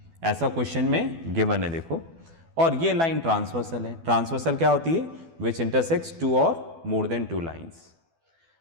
ऐसा क्वेश्चन में गिवन है देखो। और ये लाइन ट्रांसवर्सल है। ट्रांसवर्सल क्या होती है? विच इंटरसेक्ट्स टू और मोर देन टू लाइंस।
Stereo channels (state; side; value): late; left; 12 ms